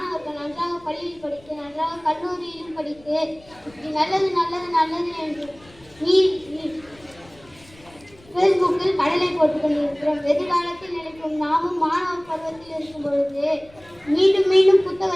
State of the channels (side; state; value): left; noise; rumble, 26 dB below the sound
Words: நன்றாக பள்ளியில் படித்து, நன்றாக கல்லூரியிலும் படித்து, இப்படி நல்லது என்று ஃபேஸ்புக்கில் கடலை போட்டுக் கொண்டிருக்கிறோம். எதிர்காலத்தில் நினைக்கும் நாமும் மாணவர் பருவத்தில் இருக்கும் பொழுது மீண்டும்